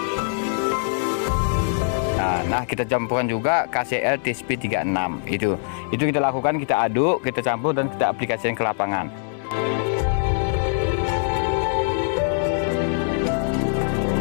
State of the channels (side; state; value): right; silent; digital silence